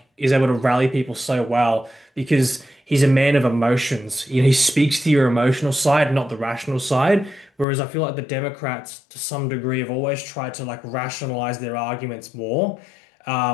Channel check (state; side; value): drops out; right; at 7.7 s